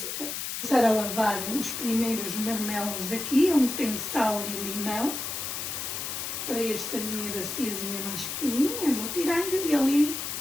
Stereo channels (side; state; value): left; noise; hiss, 4 dB below the sound